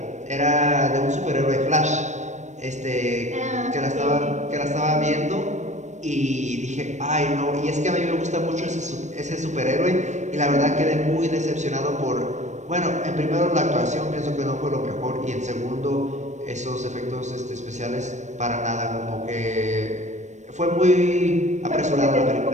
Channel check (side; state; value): left; late; 0.34 ms